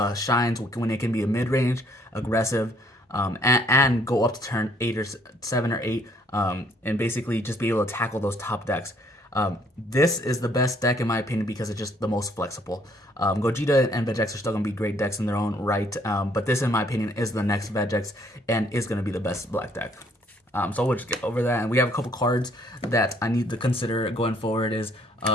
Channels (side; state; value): both; normal; correlation 0.64